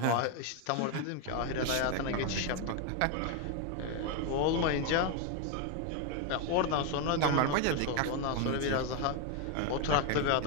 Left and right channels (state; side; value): different; both; correlation 0.01